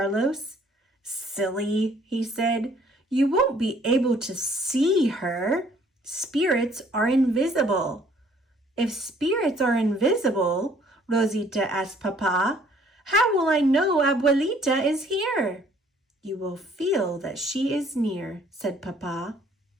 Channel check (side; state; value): both; normal; correlation 0.60